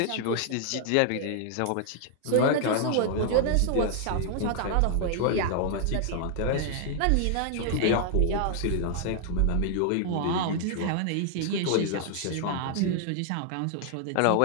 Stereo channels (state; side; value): different; both; correlation 0.00